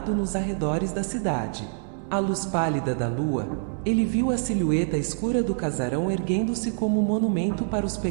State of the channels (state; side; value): silent; left; 61 dB below the other